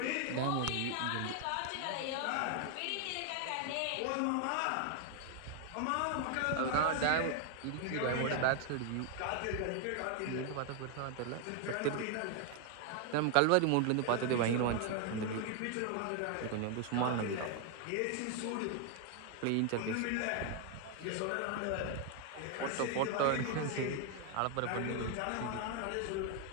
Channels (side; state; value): both; different; correlation 0.00